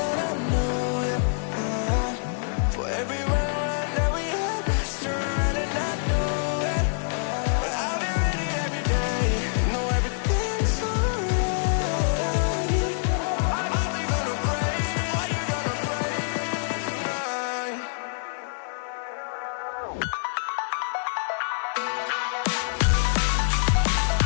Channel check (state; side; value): silent; right; digital silence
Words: yeah. For every run that we had, restaurant and I know it. But I'll be ready every day. Know everything's alright. Are we gonna pray? Are you gonna pray tonight?